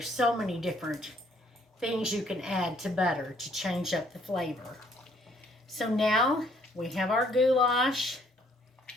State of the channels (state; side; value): normal; both; correlation 0.64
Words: so many different things you can add to butter to change up the flavor. So now we have our goulash